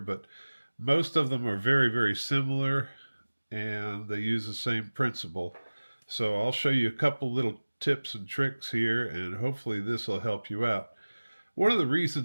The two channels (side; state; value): both; inverted; correlation -1.00